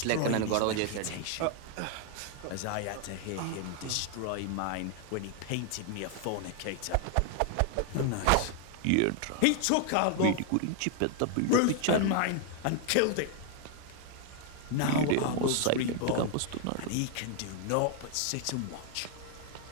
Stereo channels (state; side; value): different; both; correlation 0.00